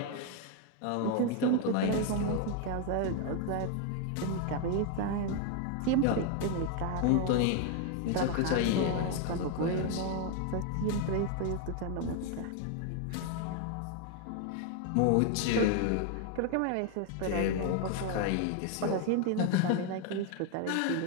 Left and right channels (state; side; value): different; both; correlation 0.01